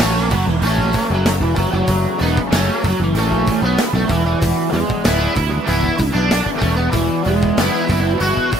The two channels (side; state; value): both; normal; correlation 0.71